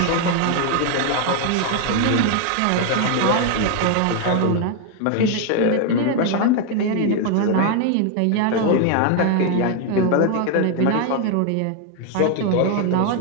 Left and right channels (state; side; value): different; both; correlation 0.01